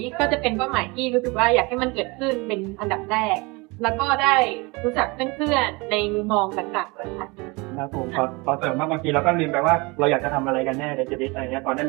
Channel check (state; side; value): quieter; left; 26.2 dB